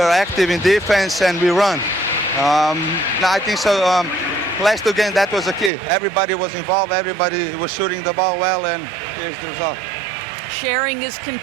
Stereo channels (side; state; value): left; drops out; at 5.7 s